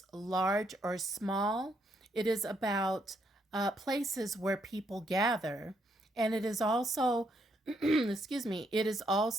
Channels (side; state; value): both; normal; correlation 0.75